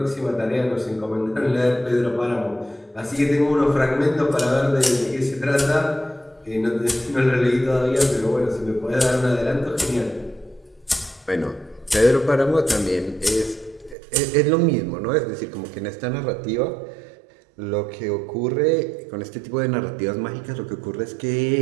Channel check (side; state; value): left; drops out; at 14.0 s